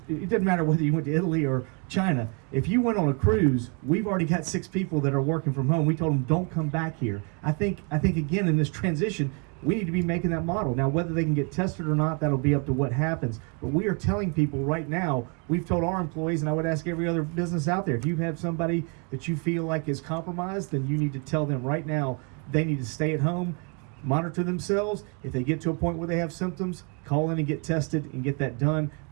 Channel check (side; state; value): left; quieter; 36.0 dB